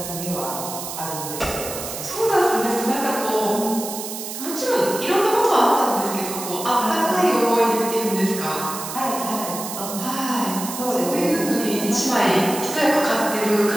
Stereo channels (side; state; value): right; noise; hiss, 8 dB below the sound